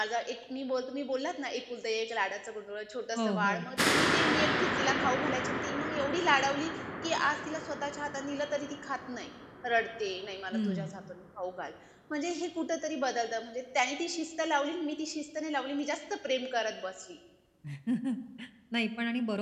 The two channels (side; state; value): both; identical; correlation 1.00